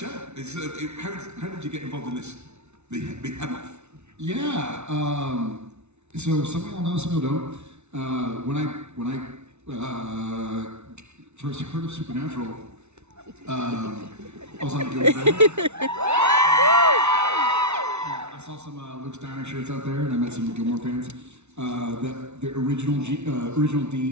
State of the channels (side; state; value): left; late; 0.82 ms